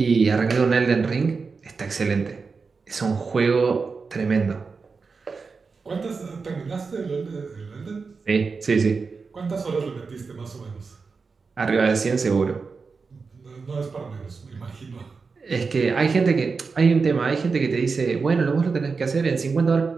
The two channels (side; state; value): left; quieter; 4.8 dB